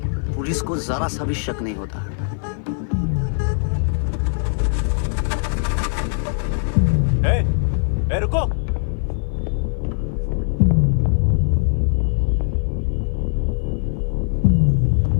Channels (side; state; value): right; silent; 56 dB below the other